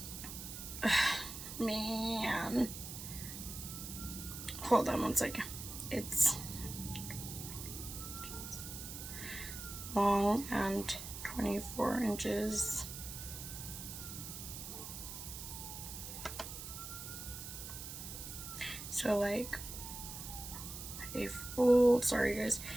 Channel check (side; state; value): right; noise; hiss, 9 dB below the sound